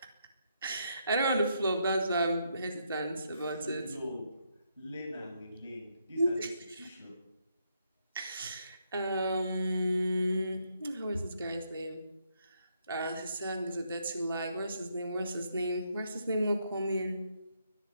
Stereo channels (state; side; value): inverted; both; correlation -0.76